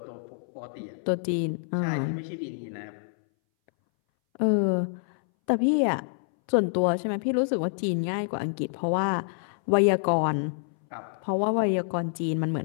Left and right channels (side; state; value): right; silent; 60 dB below the other